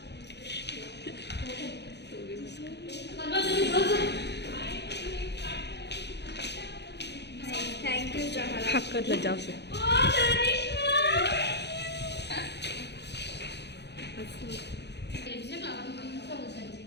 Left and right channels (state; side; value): late; right; 0.50 ms